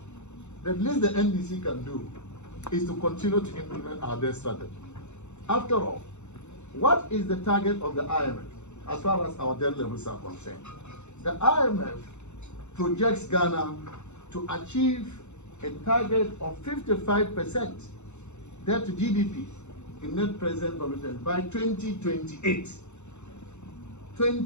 The least the NDC can do is to continue to implement our debt strategy. After all, what is the target of the IMF as far as our debt levels are concerned? The IMF projects Ghana to achieve a target of 55% debt to GDP in net present value terms by 2028.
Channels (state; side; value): late; right; 0.82 ms